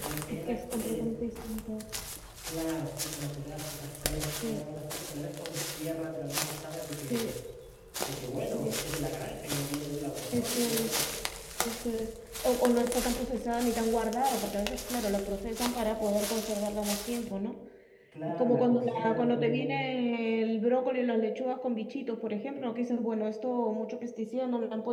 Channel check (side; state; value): both; identical; correlation 1.00